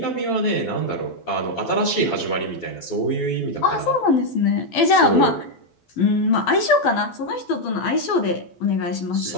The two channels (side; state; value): right; late; 12 ms